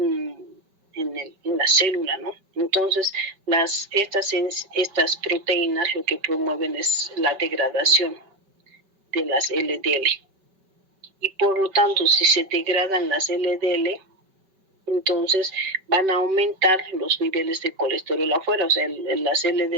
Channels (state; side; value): late; left; 5.2 ms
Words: la célula, ¿no? Entonces, estas proteínas lo que promueven es la degradación de las LDL. Y por lo tanto, si se degradan las LDL, entonces van a aumentar los niveles de colesterol afuera. O sea, las